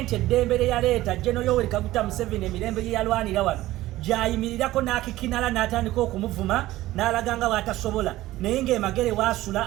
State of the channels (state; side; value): quieter; left; 16.3 dB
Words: eddembe yaleeta General Yoweri Kaguta Museveni emirembe gye yalwanira wano gyayimirirako n'akikinala n'atandika okumuvuma n'alaganga bw'atasobola naye ng'emagere